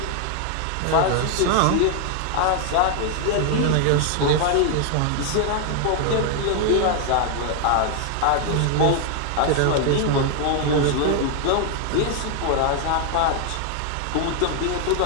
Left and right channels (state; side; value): different; both; correlation 0.00